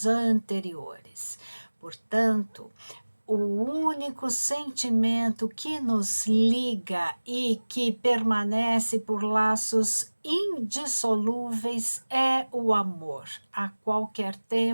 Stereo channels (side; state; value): both; inverted; correlation -1.00